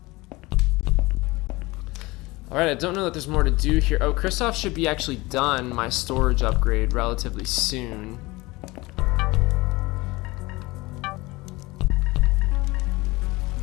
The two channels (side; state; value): right; quieter; 21.9 dB